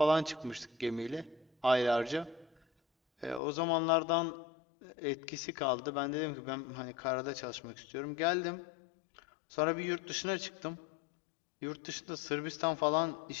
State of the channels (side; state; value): right; drops out; at 3.4 s